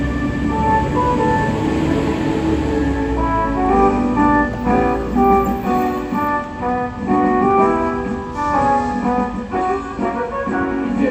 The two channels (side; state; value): both; identical; correlation 1.00